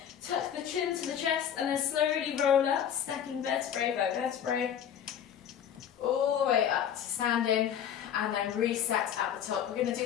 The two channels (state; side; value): quieter; right; 9.1 dB